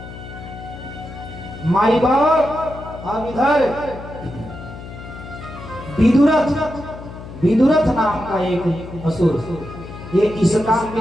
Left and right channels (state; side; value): noise; left; hum, 13 dB below the sound